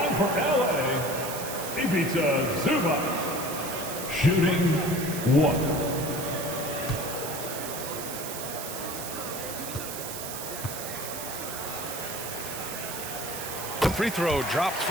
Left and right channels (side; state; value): right; noise; hiss, 7 dB below the sound